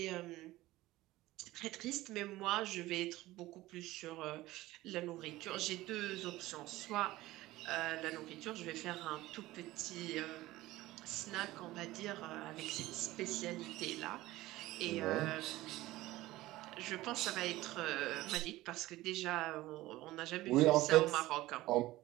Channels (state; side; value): quieter; left; 17.5 dB